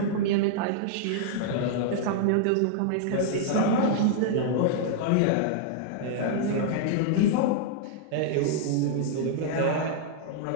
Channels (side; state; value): both; different; correlation -0.01